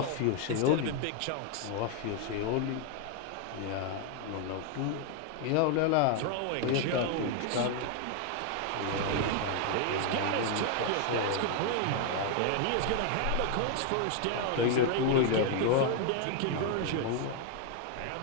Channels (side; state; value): both; different; correlation 0.00